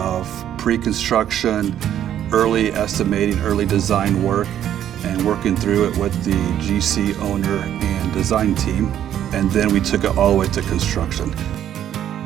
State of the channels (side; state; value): left; quieter; 10.7 dB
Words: pre-construction, early estimating, early design work, and working through it with the GC owner and design team. And then we took it all the way to construction.